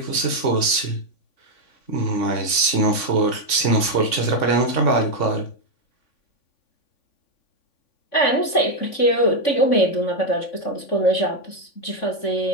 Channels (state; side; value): late; right; 3.5 ms